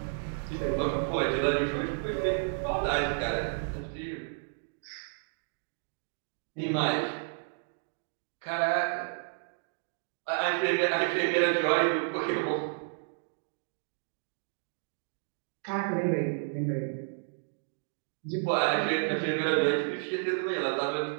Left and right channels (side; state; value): left; silent; digital silence